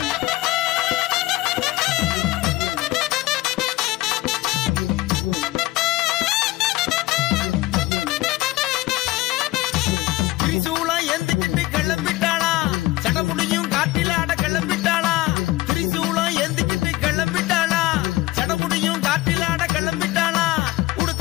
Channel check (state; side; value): quieter; right; 18.7 dB